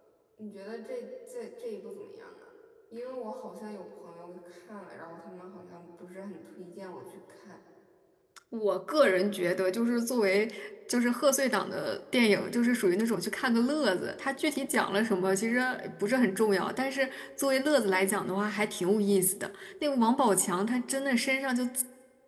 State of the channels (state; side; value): identical; both; correlation 1.00